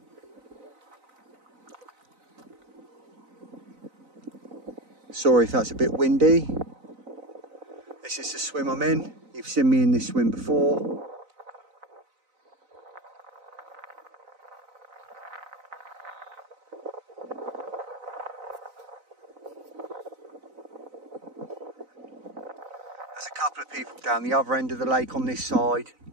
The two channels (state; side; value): late; left; 4.0 ms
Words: Sorry if that's a bit windy. This is the swim I'm in. You've seen me in this swim before. There's a couple of people down the other end of the lake on this side,